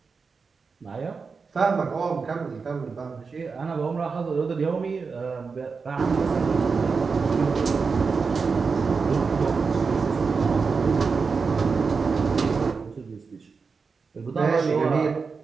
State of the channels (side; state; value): left; quieter; 5.0 dB